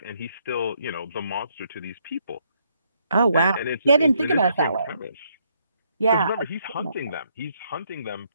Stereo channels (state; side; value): inverted; both; correlation -0.73